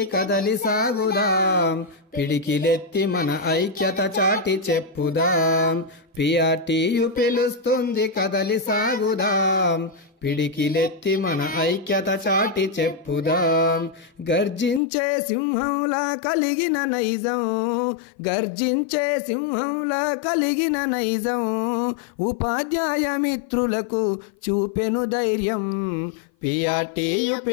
కదలి సాగుదాం పిడికిలెత్తి మన ఐక్యత చాటి చెప్పుదాం పిఆర్టీయు పిలుస్తుంది కదలి సాగుదాం పిడికిలెత్తి మన ఐక్యత చాటి చెప్పుదాం గర్జించే సింహంలా కలిగిన నైజం గర్జించే సింహంలా కలిగిన నైజం ఉపాధ్యాయ మిత్రులకు చూపెను ధైర్యం పిఆర్టీయు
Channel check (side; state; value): right; drops out; at 14.8 s